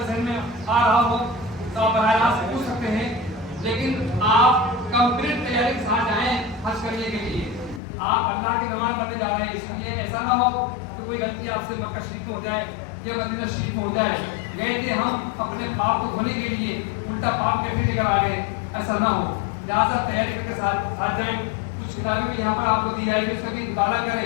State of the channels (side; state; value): right; drops out; at 7.8 s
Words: ذہن میں آ رہا ہو تو آپ براہ راست پوچھ سکتے ہیں، لیکن آپ کمپلیٹ تیاری کے ساتھ جائیں حج کرنے کے لیے. آپ اللہ کی نماز پڑھنے جا رہے ہیں، اس لیے ایسا نہ ہو کہ کوئی غلطی آپ سے مکہ شریف میں ہو جائے یا مدینہ شریف میں ہو جائے. گئے تھے ہم اپنے پاپ کو دھونے کے لیے، الٹا پاپ کے بھی لے کر آ گئے، ایسا نہ ہو. لہٰذا تیاری کر کے ساتھ جائیں. کچھ کتابیں بھی یہاں پر آپ کو دی جائے گی، اس کا بھی مطالعہ